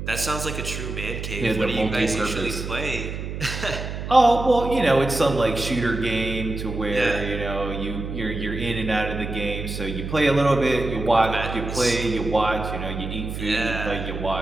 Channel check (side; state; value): right; noise; hum, 6 dB below the sound